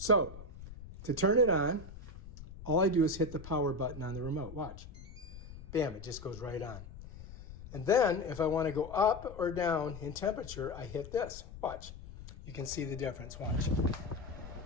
So to turn it on, all I do is hit the power button on the remote. Watch. Bam, it just goes right on. And then if I want to go up or down in temperature, I hit this. Watch. You can see the difference. Watch.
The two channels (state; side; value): noise; left; rumble, 14 dB below the sound